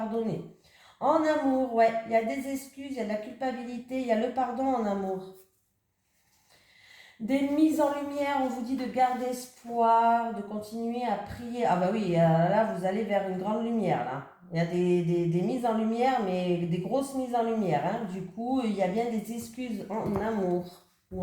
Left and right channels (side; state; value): both; identical; correlation 1.00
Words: En amour, ouais, il y a des excuses, il y a de la culpabilité, il y a le pardon en amour. Des mises en lumière, on vous dit de garder espoir, de continuer à prier. Ah bah oui, là vous allez vers une grande lumière là. Il y a des mises en lumière, mais des grosses mises en lumière, hein. Du coup, il y a bien des excuses en amour